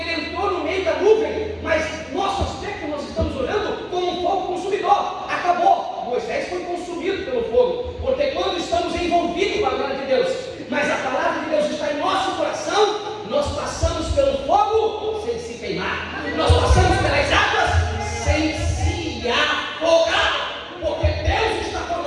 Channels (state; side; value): identical; both; correlation 1.00